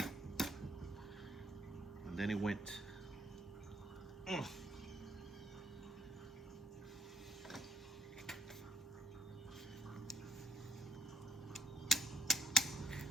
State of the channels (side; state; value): both; normal; correlation 0.65